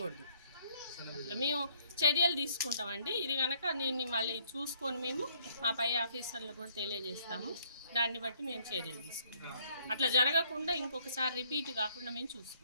మేము చర్యలు తీసుకుంటామండి. ఇది కనుక నేను మళ్ళీ చూసుకొని మేము మా పై ఆఫీసర్లు కూడా తెలియజేస్తాము. దాన్ని బట్టి మేము చర్యలు తీసుకుంటాం. అట్లా జరగకుండా ఇంకొకసారి రిపీట్ కాకుండా మేము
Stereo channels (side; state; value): both; inverted; correlation -0.65